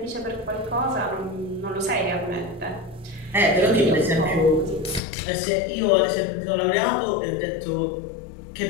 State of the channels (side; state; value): right; drops out; at 5.0 s